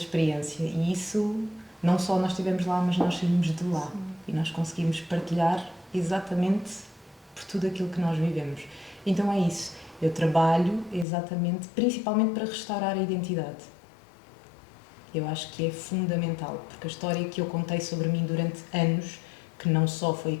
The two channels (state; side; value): drops out; right; at 11.1 s